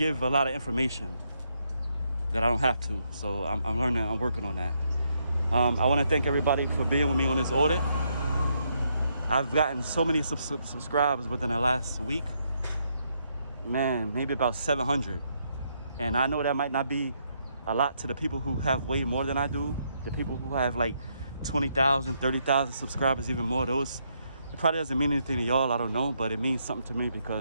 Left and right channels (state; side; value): inverted; both; correlation -0.76